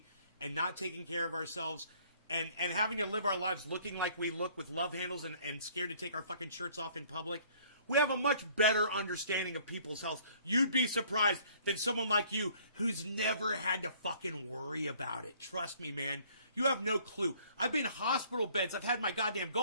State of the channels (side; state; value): both; inverted; correlation -0.58